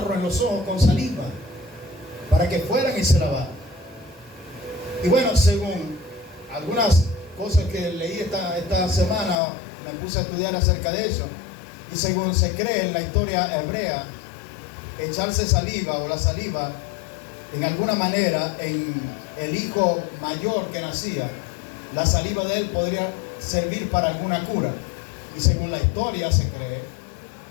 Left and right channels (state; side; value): drops out; right; at 9.3 s